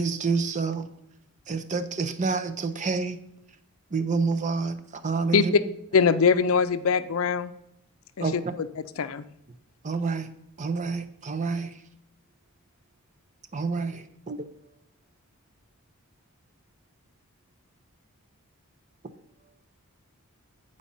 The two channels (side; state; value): both; normal; correlation 0.11